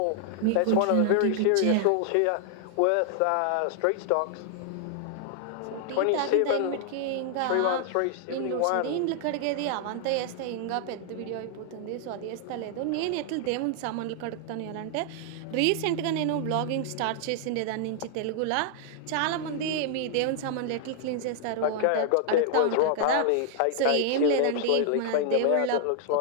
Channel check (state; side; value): different; both; correlation 0.00